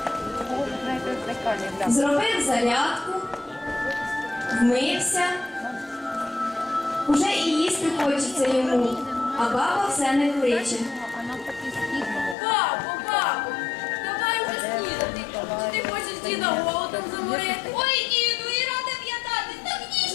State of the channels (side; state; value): right; drops out; at 12.4 s